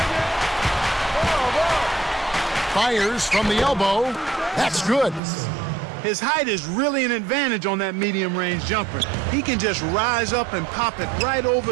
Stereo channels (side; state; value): left; drops out; at 5.2 s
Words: Fires from the elbow. That's good. His height is really an advantage on that medium-range jumper. He can just rise up and pop it right